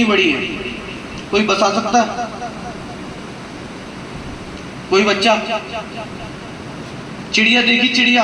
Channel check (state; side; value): identical; both; correlation 1.00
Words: بڑی ہے؟ کوئی بتا سکتا ہے؟ کوئی بچہ؟ چڑیا دیکھی چڑیا